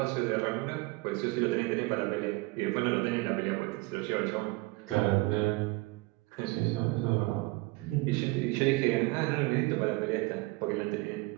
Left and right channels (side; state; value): left; quieter; 23.6 dB